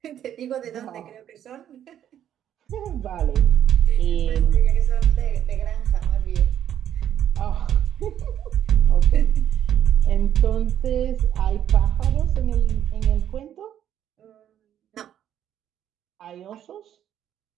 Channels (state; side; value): quieter; left; 10.4 dB